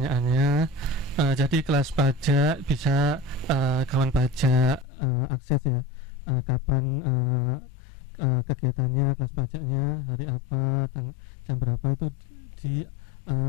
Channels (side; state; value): right; drops out; at 4.9 s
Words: Jadi kelas pajak bisa kawan pajak akses ya. Kapan kegiatannya, kelas pajaknya, hari apa, jam berapa itu di